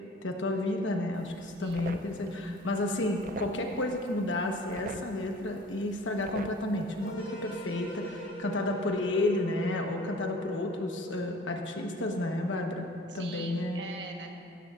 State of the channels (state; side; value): normal; both; correlation 0.47